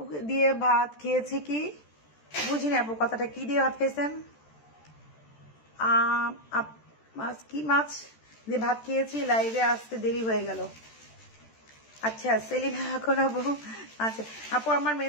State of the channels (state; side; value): late; right; 13 ms